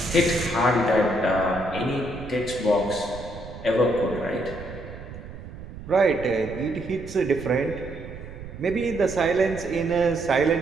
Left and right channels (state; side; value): noise; right; rumble, 13 dB below the sound